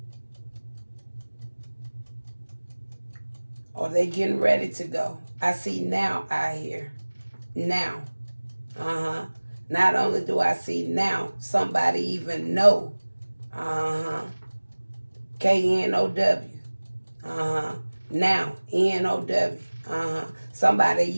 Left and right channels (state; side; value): inverted; both; correlation -1.00